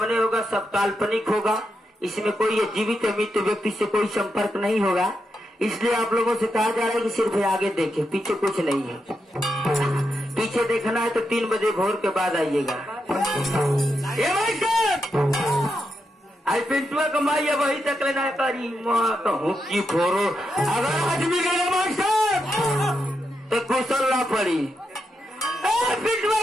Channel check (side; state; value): both; normal; correlation 0.84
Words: होगा सब काल्पनिक होगा। इसमें कोई जीवित मृत व्यक्ति से कोई संपर्क नहीं होगा। इसलिए आप लोगों से कहा जा रहा है कि सिर्फ आगे देखें, पीछे कुछ नहीं है। पीछे देखना है तो 3 बजे भोर के बाद आइएगा। आई पिंटुआ कमाई है वही तक लेना करी कहूँ की फोरो। अगर आदमी गए मास्टर तो कुशल ना पड़ी। पिंटुआ